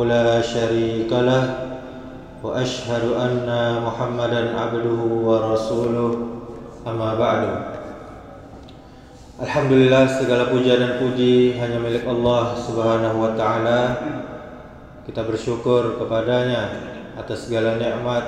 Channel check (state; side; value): identical; both; correlation 1.00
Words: la syarika lah, wa asyhadu anna Muhammadan abduhu wa rasuluh. Amma ba'du. Alhamdulillah, segala puja dan puji hanya milik Allah Subhanahu wa ta'ala. Kita bersyukur kepadanya atas segala nikmat